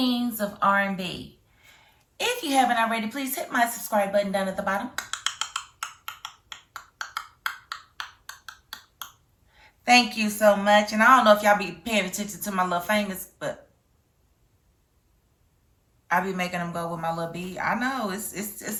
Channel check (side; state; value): both; identical; correlation 1.00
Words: of R&B. If you haven't already, please hit my subscribe button down at the bottom. Thank you so much. And I don't know if y'all be paying attention to my little fingers, but I be making them go with my little bead. I know it's